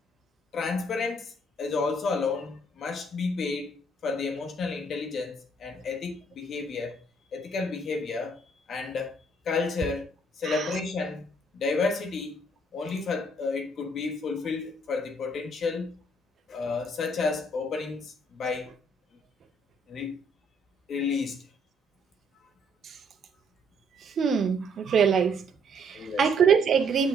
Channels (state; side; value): normal; both; correlation 0.66